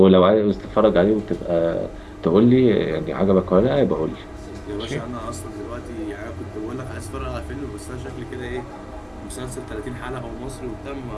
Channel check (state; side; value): identical; both; correlation 1.00